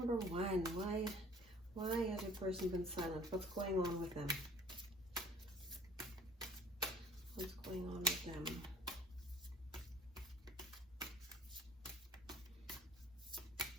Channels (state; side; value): normal; both; correlation 0.52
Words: 1, why has your person been silent? What's going on with them? What's going on with them?